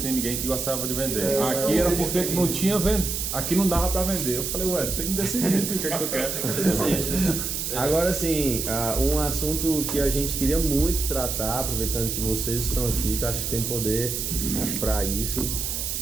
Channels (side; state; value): right; noise; hiss, 3 dB below the sound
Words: ninguém que gostava de vender. Aqui era porque não tinha aqui não dava pra vender. Eu falei: ué, tem que decidir o que é que tu quer. Agora sim, um assunto que a gente queria muito tratar, aproveitando que vocês estão aqui, que eu acho que tem poder pra isso,